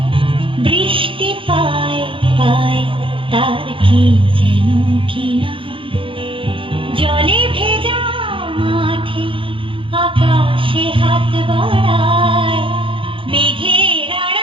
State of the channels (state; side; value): late; left; 0.25 ms